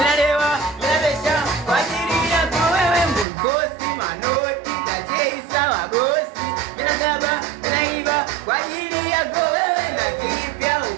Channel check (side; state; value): left; drops out; at 3.2 s